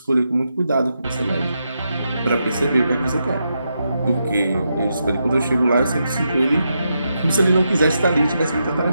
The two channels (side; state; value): both; inverted; correlation -0.84